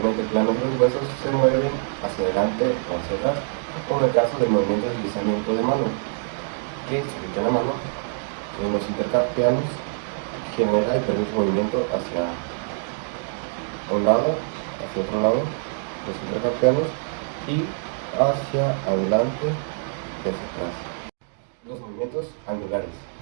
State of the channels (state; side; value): silent; left; 62 dB below the other